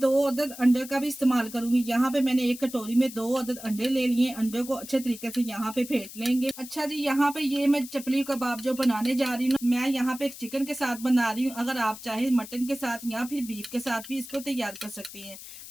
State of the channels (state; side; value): noise; left; hiss, 14 dB below the sound